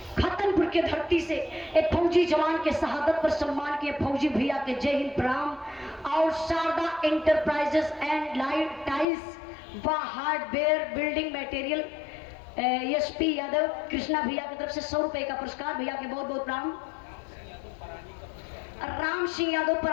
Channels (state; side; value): drops out; right; at 9.1 s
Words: खतनपुर के धरती से एक फौजी जवान के शहादत पर सम्मान किए फौजी भैया के जय हिंद प्रणाम। और Sharda enterprises and light tiles व hardware building material SP Yadav Krishna भैया की तरफ से 100 रुपए का पुरस्कार, भैया के बहुत बहुत प्रणाम। राम सिंह यादव